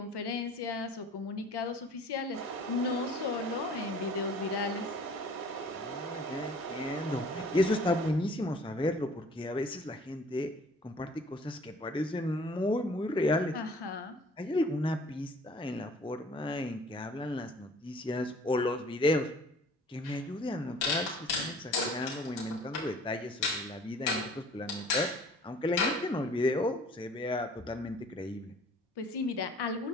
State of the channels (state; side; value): normal; both; correlation 0.51